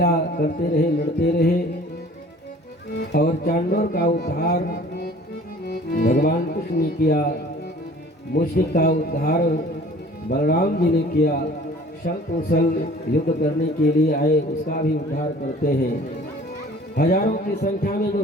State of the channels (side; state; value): both; normal; correlation 0.49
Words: करते रहे, लड़ते रहे और चांडोर का उद्धार भगवान कृष्ण ने किया, मुश्रिक का उद्धार बलराम जी ने किया। छल कौशल युद्ध करने के लिए आए उसका भी उद्धार करते हैं। हजारों की संख्या में जो